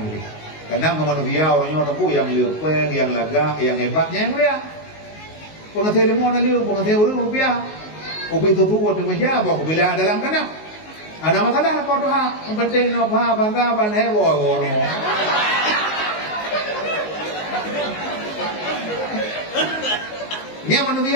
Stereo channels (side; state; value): right; late; 19 ms